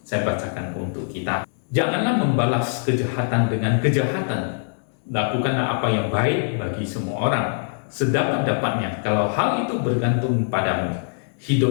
Saya bacakan untuk kita. Janganlah membalas kejahatan dengan kejahatan. Lakukanlah apa yang baik bagi semua orang, sedapat-dapatnya. Kalau hal itu bergantung padamu,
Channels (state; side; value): silent; right; digital silence